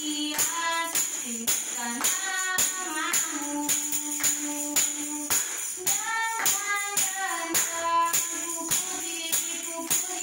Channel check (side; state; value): both; identical; correlation 1.00